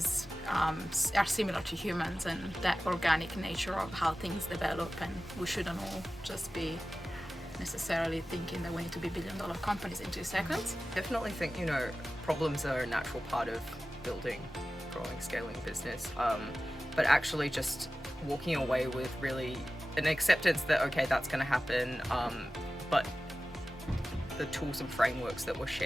are similar to humans, and that organic nature of how things develop, and we shouldn't all just be necessarily thinking that we need to be billion-dollar companies in 2 seconds. Definitely think, problems are a natural part of building, growing, scaling a business, but actually just walking away with really an acceptance that, okay, that's going to happen, but the tools and frameworks that were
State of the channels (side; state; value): both; normal; correlation 0.95